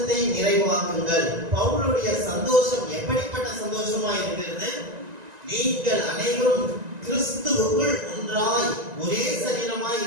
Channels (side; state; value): left; late; 1.9 ms